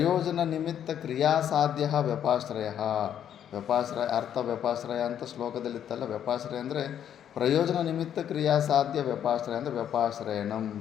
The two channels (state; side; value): quieter; right; 9.7 dB